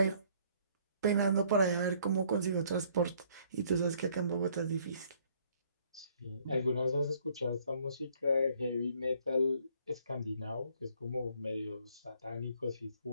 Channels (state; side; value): inverted; both; correlation -0.63